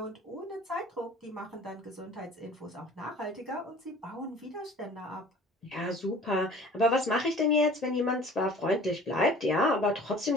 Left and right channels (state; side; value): normal; both; correlation 0.47